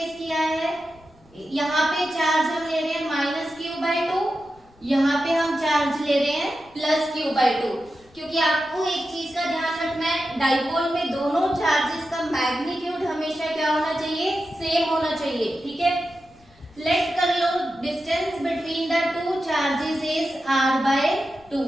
किया है, यहाँ पे चार्ज हम ले रहे हैं माइनस Q/2, यहाँ पे हम चार्ज ले रहे हैं प्लस Q/2, क्योंकि आपको एक चीज का ध्यान रखना है, डाइपोल में दोनों चार्जेस का मैग्नीट्यूड हमेशा क्या होना चाहिए, सेम होना चाहिए, ठीक है। लेट कर लो distance between the two charges is r/2,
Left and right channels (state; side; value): noise; left; rumble, 29 dB below the sound